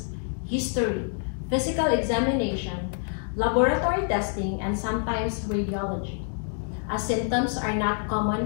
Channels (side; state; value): right; silent; 57 dB below the other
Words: history, physical examination, laboratory testing, and sometimes radiology, as symptoms are not common